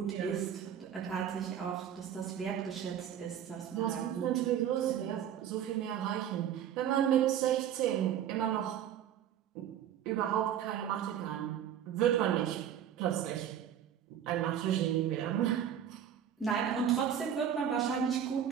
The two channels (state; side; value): quieter; left; 9.5 dB